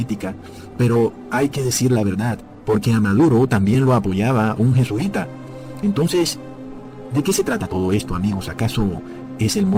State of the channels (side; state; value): both; identical; correlation 1.00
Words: pero hay que decir la verdad, porque a Maduro también lo apoyaba un jesuita. Entonces, ¿de qué se trata todo esto, amigos? ¿Acaso es el